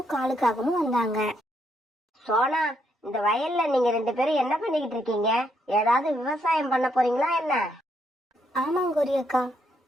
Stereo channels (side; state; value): both; normal; correlation 0.76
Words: காலுக்காகவும் வந்தாங்க. சோனா, இந்த வயல்ல நீங்க 2 பேரும் என்ன பண்ணிக்கிட்டு இருக்கீங்க? ஏதாவது விவசாயம் பண்ண போறீங்களா என்ன? ஆமாங்க கோரி அக்கா,